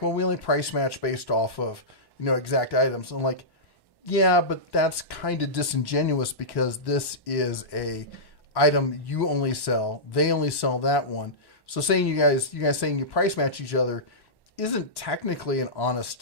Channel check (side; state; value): right; late; 1.1 ms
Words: well, we only price match based off of, exact items. I'm like, yeah, but that's kind of disingenuous because this is a item you only sell. They only sell that one. So saying you guys saying you price match each other isn't technically an honest